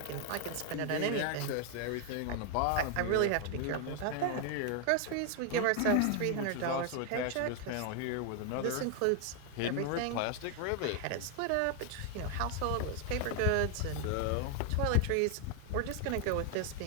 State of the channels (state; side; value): different; both; correlation 0.00